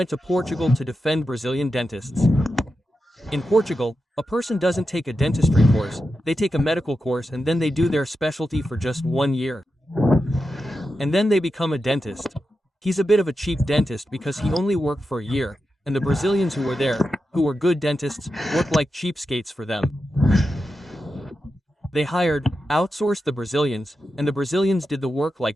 to Portugal to defend Brazilian dentists. In Portugal, a person doesn't take a dentistry course, they take a medical course and then they do their specialty for just 1 year. And then they become a dentist. He's a bit of a cheap dentist because he only worked for a year, and the Brazilians who were there, who were good dentists, worked like cheapskates for them. They outsourced the Brazilians, and the Brazilians did the work like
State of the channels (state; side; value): normal; both; correlation 0.89